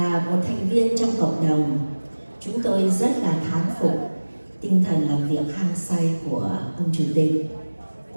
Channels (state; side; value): inverted; both; correlation -1.00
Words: một thành viên trong cộng đồng, chúng tôi rất là thán phục tinh thần làm việc hăng say của ông Chủ tịch,